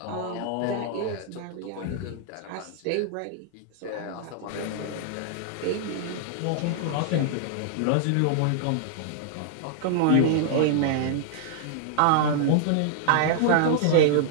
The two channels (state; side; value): different; both; correlation -0.01